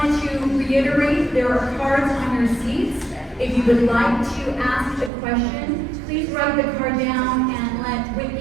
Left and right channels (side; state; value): left; drops out; at 5.1 s